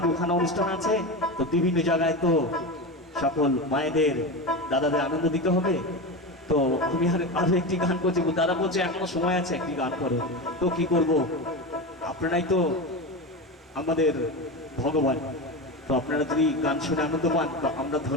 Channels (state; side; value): normal; both; correlation 0.21